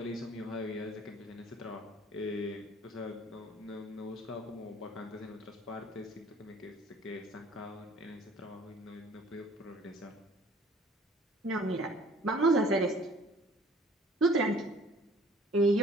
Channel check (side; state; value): both; normal; correlation 0.53